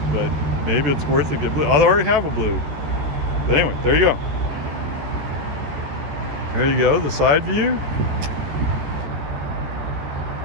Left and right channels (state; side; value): late; left; 14 ms